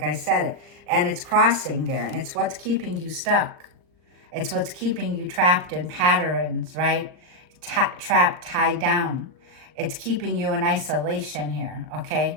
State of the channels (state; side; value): late; left; 39 ms